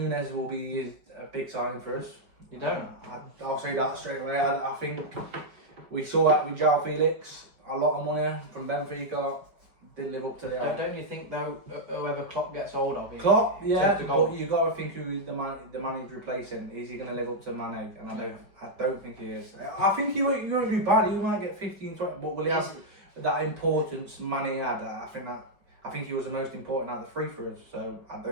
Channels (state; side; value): late; left; 5.1 ms